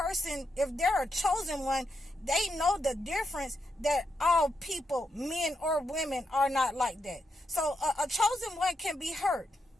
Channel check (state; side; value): normal; both; correlation 0.82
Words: if they're a chosen one, they know the difference that all people, men or women, are not like that. So a chosen one can be hurt,